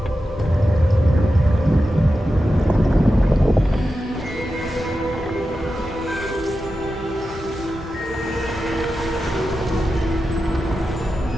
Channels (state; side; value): normal; both; correlation 0.91